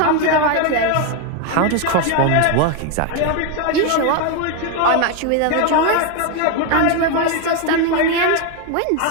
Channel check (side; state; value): both; different; correlation 0.01